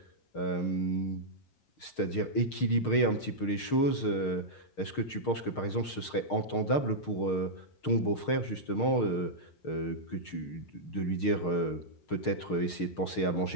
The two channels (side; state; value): right; late; 6.5 ms